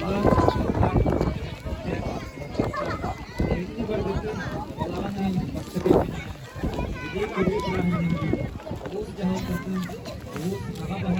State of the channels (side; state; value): both; identical; correlation 1.00